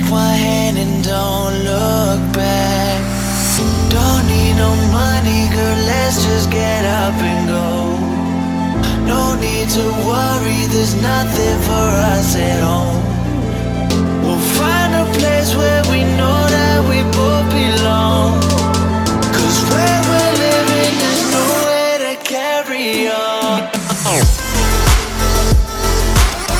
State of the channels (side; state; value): both; identical; correlation 1.00